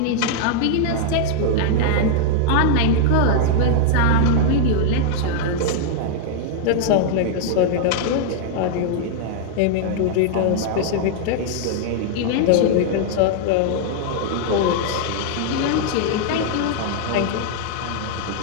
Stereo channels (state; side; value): different; both; correlation 0.00